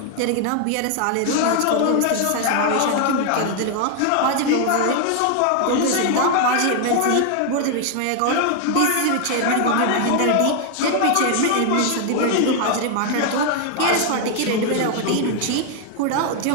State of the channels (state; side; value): different; both; correlation 0.00